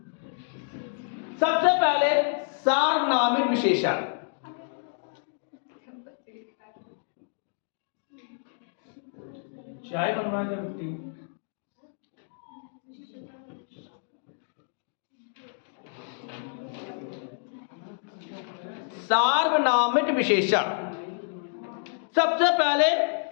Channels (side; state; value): right; silent; digital silence